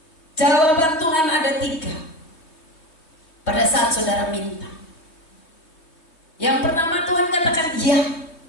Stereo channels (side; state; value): right; late; 3.1 ms